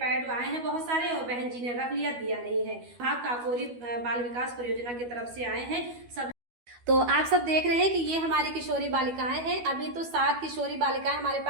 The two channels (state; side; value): late; left; 12 ms